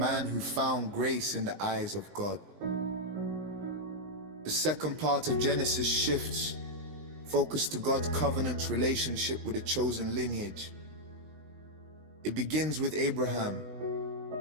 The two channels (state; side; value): late; left; 19 ms